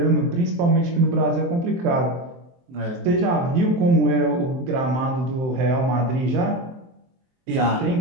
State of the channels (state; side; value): late; left; 23 ms